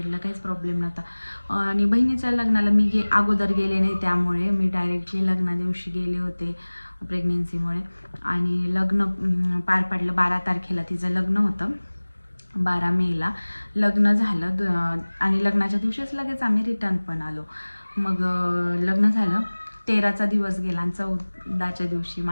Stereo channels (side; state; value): both; inverted; correlation -1.00